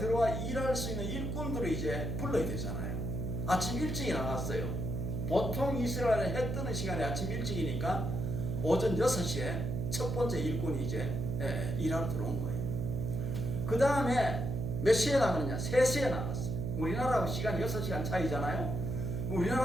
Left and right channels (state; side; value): noise; right; hum, 2 dB below the sound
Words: 일할 수 있는 일꾼들을 이제 불러야 되잖아요. 아침 일찍이 나갔어요. 보통 이스라엘에 해 뜨는 시간에 아침 일찍이니까 오전 6시에 첫 번째 일꾼이 이제 일하러 들어온 거예요. 그 다음에 몇 시에 나가느냐? 3시에 나갔어요. 우리나라하고 시간이 6시간 차이잖아요.